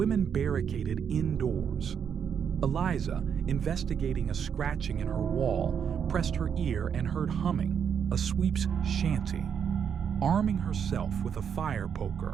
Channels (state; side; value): quieter; left; 7.6 dB